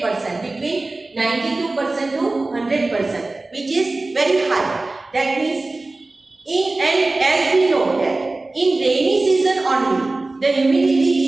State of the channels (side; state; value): left; quieter; 3.1 dB